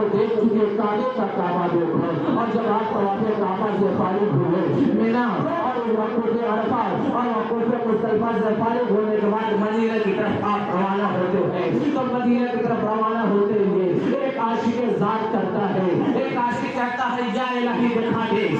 دیکھ چکے کعبے کا کعبہ دیکھو، اور جب آپ طواف کعبہ سے فارغ ہوئے مینا اور وقوف عرفات اور وقوف مزدلفہ سے فارغ ہونے کے بعد مدینہ کی طرف آپ روانہ ہوتے ہیں، تو مدینہ کی طرف روانہ ہوتے ہوئے ایک عاشق ذات کرتا ہے، ایک عاشق کہتا ہے یا الہی دکھا دے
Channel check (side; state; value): both; identical; correlation 1.00